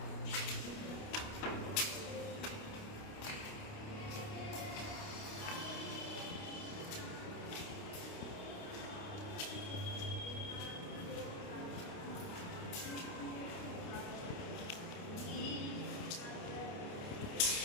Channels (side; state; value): right; late; 29 ms